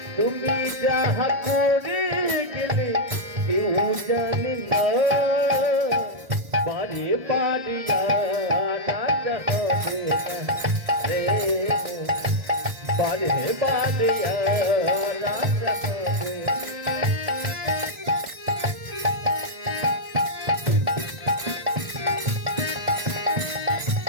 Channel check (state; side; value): late; left; 1.4 ms